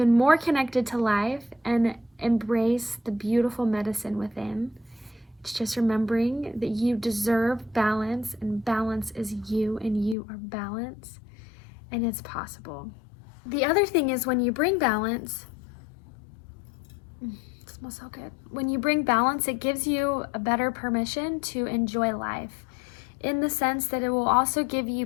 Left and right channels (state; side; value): drops out; right; at 10.2 s